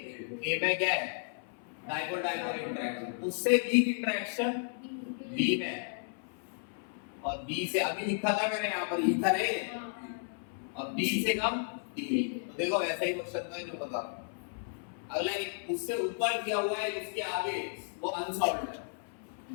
में क्या है डाइपोल डाइपोल इंटरेक्शन। उससे वीक इंटरेक्शन बी में है और बी से अभी लिखा था मैंने यहाँ पर ईथर है और बी से कम डी। तो देखो ऐसा ही क्वेश्चन था जो बता। अगला एक उससे ऊपर दिया हुआ है उसके आगे वो अनसॉल्व्ड है।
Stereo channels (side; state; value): right; silent; 55 dB below the other